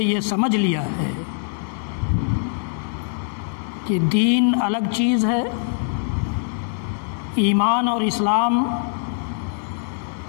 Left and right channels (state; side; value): silent; right; 64 dB below the other